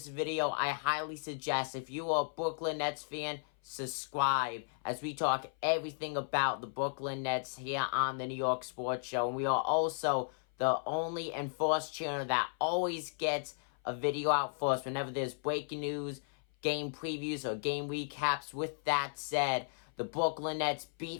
video, I highly suggest if you are a Brooklyn Nets fan, subscribe as we talk everything about the Brooklyn Nets here on the New York Sports Show. And we are also the only and first channel that always gets a video out for us whenever there's breaking news, game previews, or game recaps. With that said, the Brooklyn Nets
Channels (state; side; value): silent; right; 55 dB below the other